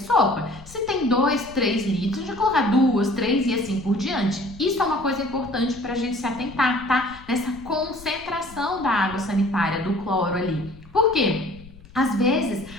sopa. Se tem 2, 3 litros, a gente coloca 2, 3 e assim por diante. Isso é uma coisa importante para a gente se atentar, tá? Nessa concentração da água sanitária, do cloro ali. Por quê? Às vezes,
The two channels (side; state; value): left; noise; rumble, 20 dB below the sound